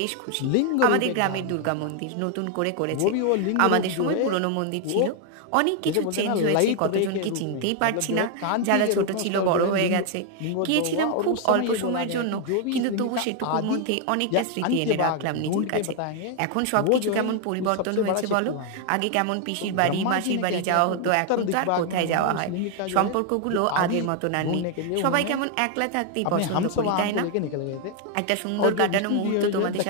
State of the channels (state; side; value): different; both; correlation 0.00